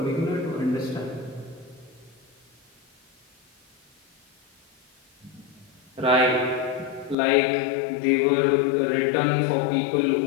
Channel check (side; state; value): right; drops out; at 7.2 s